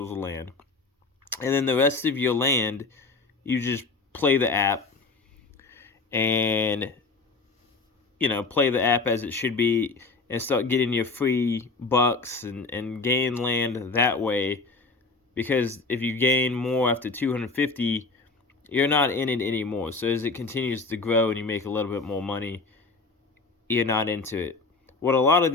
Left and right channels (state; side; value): quieter; right; 3.9 dB